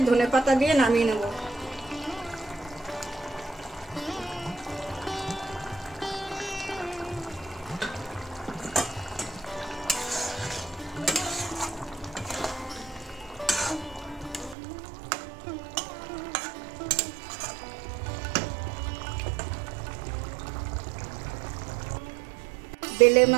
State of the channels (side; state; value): left; drops out; at 14.6 s